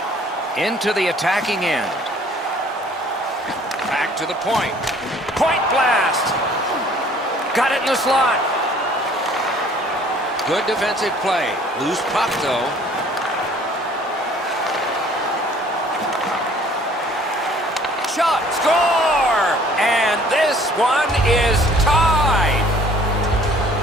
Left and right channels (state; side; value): normal; both; correlation 0.55